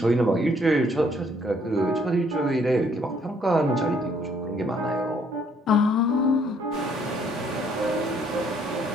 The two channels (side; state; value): both; normal; correlation 0.65